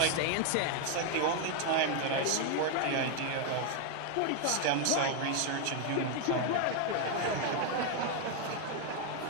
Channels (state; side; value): different; both; correlation 0.01